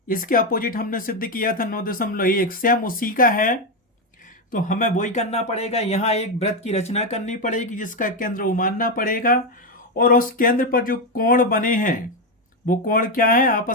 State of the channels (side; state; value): both; normal; correlation 0.08